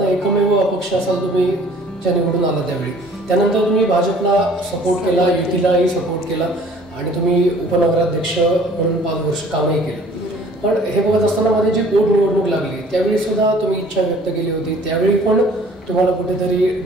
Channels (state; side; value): normal; both; correlation 0.53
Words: एकमेव अपक्ष असाल तुम्ही ज्या निवडून आला त्यावेळी. त्यानंतर तुम्ही भाजपला सपोर्ट केला, युतीलाही सपोर्ट केला आणि तुम्ही उपनगराध्यक्ष म्हणून 5 वर्ष कामही केलं. पण हे बघत असताना मध्ये जी पोटनिवडणूक लागली त्यावेळी सुद्धा तुम्ही इच्छा व्यक्त केली होती, त्यावेळी पण तुम्हाला कुठेतरी